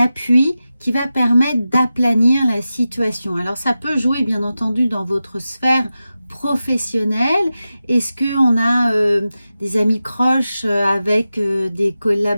qui va permettre d'aplanir la situation. Alors ça peut jouer bien entendu dans votre sphère professionnelle. Est-ce qu'on a des amis proches avec des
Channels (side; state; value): both; inverted; correlation -0.93